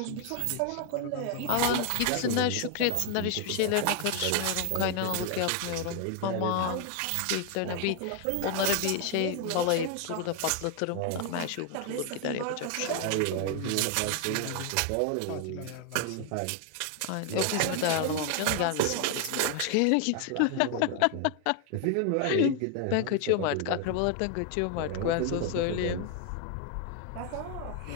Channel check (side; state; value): both; different; correlation 0.00